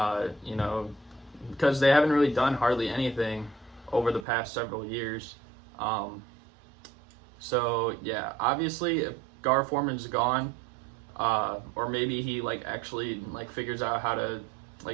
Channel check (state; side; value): drops out; left; at 4.2 s